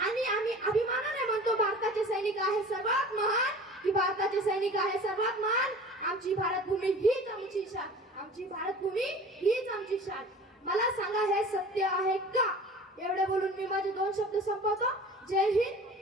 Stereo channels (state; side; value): normal; both; correlation 0.41